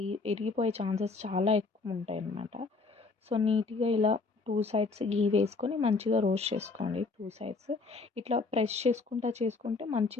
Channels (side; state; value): right; quieter; 4.0 dB